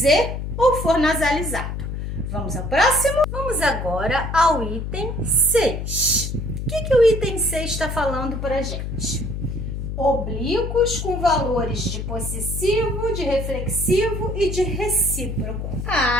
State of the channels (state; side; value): noise; left; hum, 5 dB below the sound